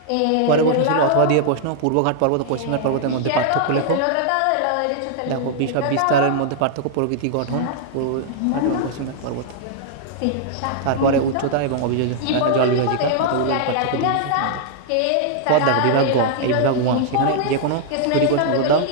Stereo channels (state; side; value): different; both; correlation -0.01